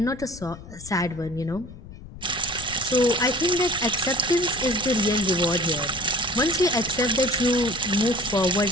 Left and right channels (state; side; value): noise; left; rumble, 16 dB below the sound